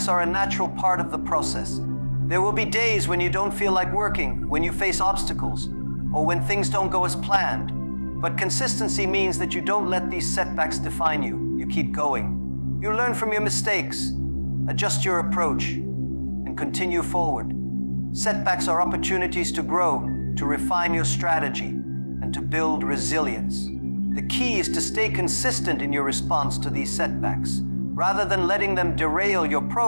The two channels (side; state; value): both; inverted; correlation -1.00